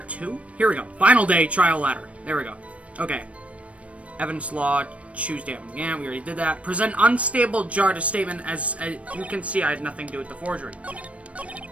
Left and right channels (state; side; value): late; left; 0.064 ms